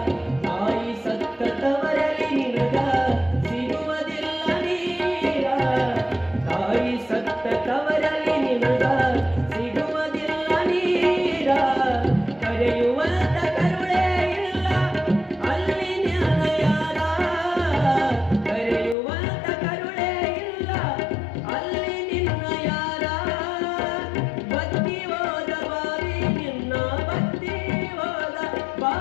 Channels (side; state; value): right; drops out; at 18.9 s